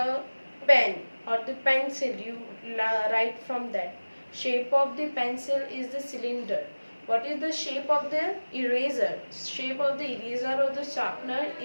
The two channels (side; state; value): both; inverted; correlation -1.00